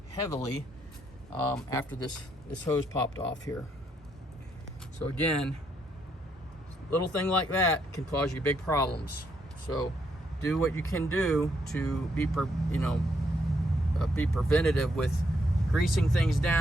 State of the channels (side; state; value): both; normal; correlation 0.75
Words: heavily after this hose popped off here. So again, little thing like that can cause you big problems. So do what you can do to be preventative with greasing things